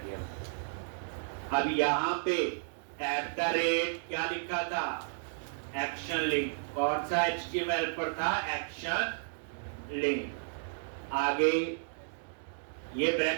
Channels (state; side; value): silent; left; digital silence